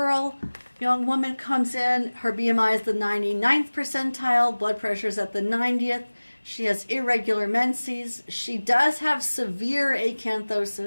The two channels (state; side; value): inverted; both; correlation -1.00